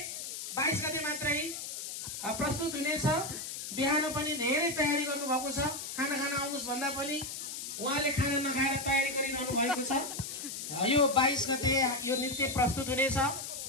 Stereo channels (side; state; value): left; noise; hiss, 7 dB below the sound